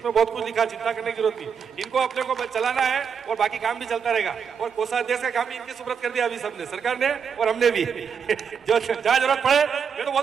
बहुत कुछ लिखा, चिंता करने की जरूरत नहीं। इनको अपने को चलाना है और बाकी काम भी चलता रहेगा। और कोषाध्यक्ष का काम भी इनकी सुपुर्द कर दिया अभी सबने, सरकार ने और हमने भी। जो जहाँ जरूरत पड़े, मैं तो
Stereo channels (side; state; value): left; quieter; 6.8 dB